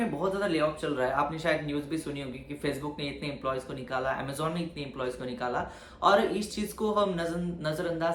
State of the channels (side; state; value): both; identical; correlation 1.00